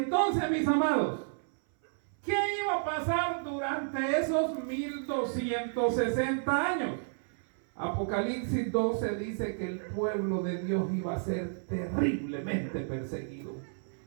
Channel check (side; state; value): left; silent; 57 dB below the other